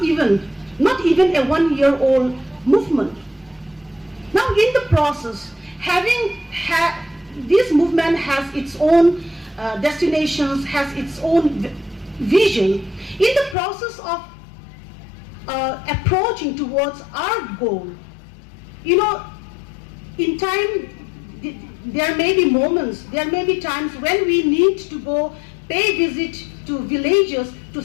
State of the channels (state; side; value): drops out; right; at 13.6 s